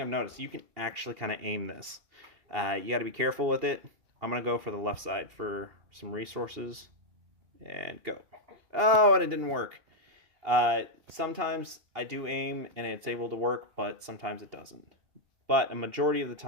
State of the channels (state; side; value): late; left; 2.8 ms